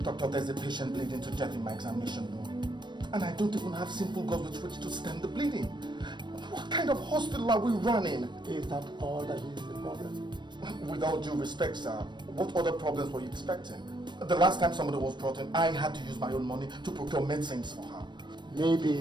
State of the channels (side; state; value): left; late; 0.22 ms